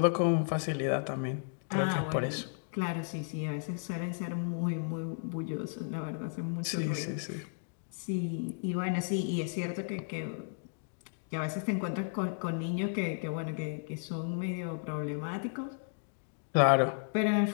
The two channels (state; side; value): silent; right; digital silence